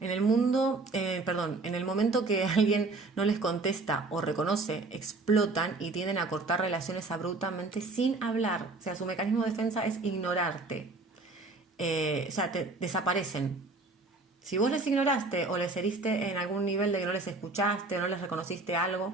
En el en el momento que alguien no les contesta o reconoce, explotan y tienden a cortar relaciones abruptamente sin hablar. O sea, su mecanismo de defensa es ignorarte. Te desaparecen. Si vos les ignoraste o les heriste en algún nivel de que no les escuchaste o no les reconociste algo,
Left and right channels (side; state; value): left; quieter; 3.6 dB